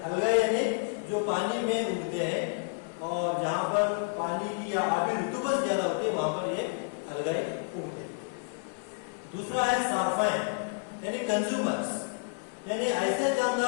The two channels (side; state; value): right; silent; 58 dB below the other